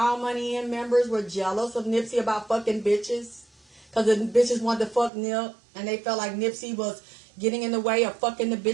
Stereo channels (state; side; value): drops out; left; at 5.1 s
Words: Money In members were jealous of Nipsey about fucking bitches? Because the bitches wanted to fuck Nip, and they felt like Nipsey was getting in the way of fucking the